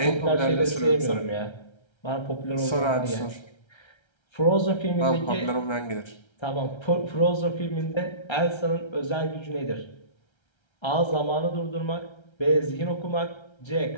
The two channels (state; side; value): late; right; 1.3 ms